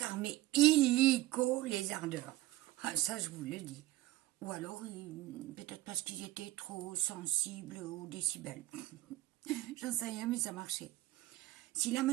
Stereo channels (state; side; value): quieter; left; 16.8 dB